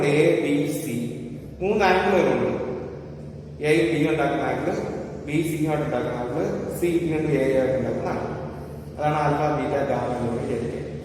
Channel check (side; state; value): both; identical; correlation 1.00